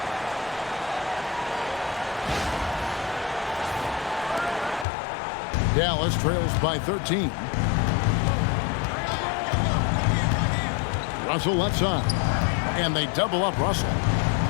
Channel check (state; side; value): drops out; right; at 4.9 s